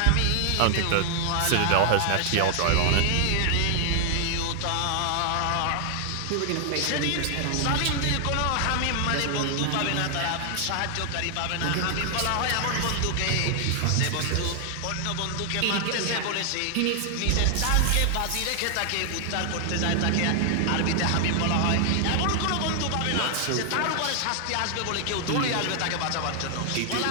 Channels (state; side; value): different; both; correlation 0.00